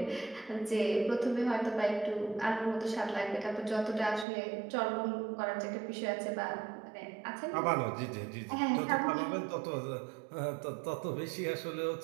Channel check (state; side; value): drops out; left; at 4.2 s